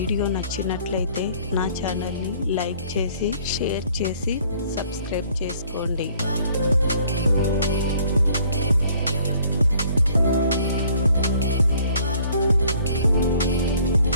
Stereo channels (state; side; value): inverted; both; correlation -0.58